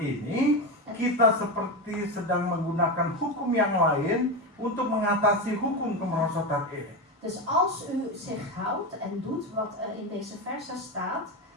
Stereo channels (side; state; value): both; normal; correlation 0.16